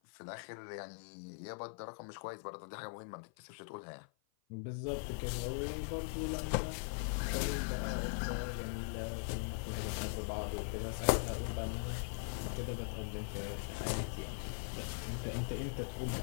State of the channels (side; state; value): right; silent; 50 dB below the other